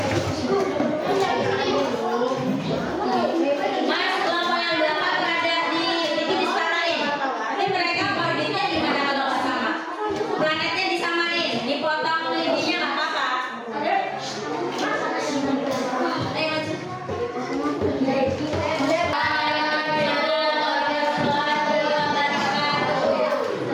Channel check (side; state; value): both; identical; correlation 1.00